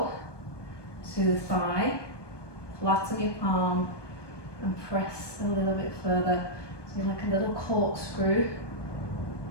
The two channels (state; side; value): late; right; 1.2 ms